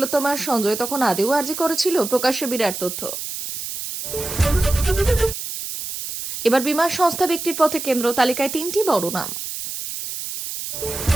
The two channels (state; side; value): noise; right; hiss, 7 dB below the sound